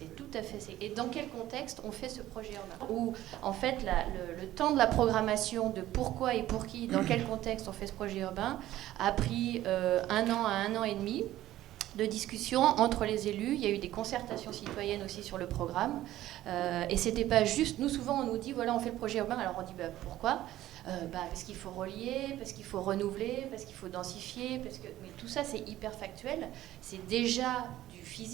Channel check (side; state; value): left; quieter; 14.3 dB